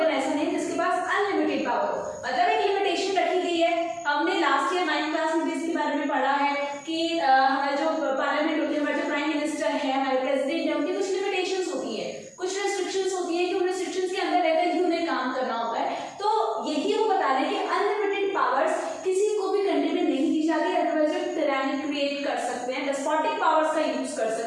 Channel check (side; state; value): both; identical; correlation 1.00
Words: ऐसा नहीं जिसके पास अनलिमिटेड पावर हो, मतलब एक लिमिटेशन रखी गई है। हमने लास्ट ईयर 9th क्लास में इसके बारे में पढ़ा है कि हमारे जो पार्लियामेंट होती है, हमारे जो प्राइम मिनिस्टर है, हमारे प्रेसिडेंट है, उनकी कुछ लिमिटेशंस होती है, कुछ रेस्ट्रिक्शंस होती है कि उन रेस्ट्रिक्शंस के अंदर रहकर ही उन्हें काम करना होता है। तो यही वो बता रहे हैं कि अनलिमिटेड पावर्स किसी को भी कंट्री में नहीं दी जाती, अदरवाइज वो टायरानी क्रिएट कर सकते हैं, डेस्पोटिक पावर्स का यूज कर